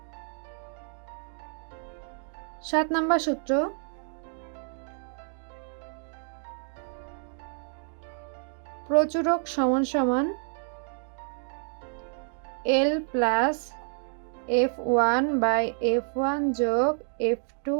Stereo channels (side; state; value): left; silent; 59 dB below the other